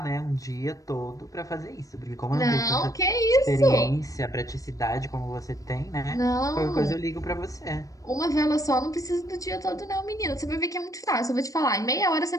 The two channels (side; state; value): right; late; 0.16 ms